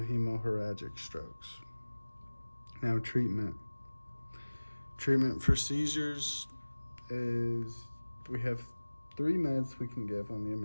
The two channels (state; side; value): inverted; both; correlation -1.00